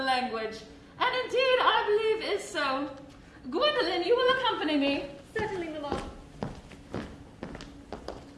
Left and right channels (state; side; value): identical; both; correlation 1.00